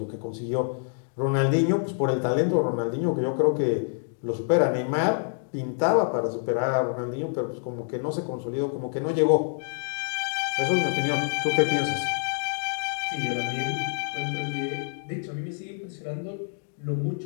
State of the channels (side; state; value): right; silent; digital silence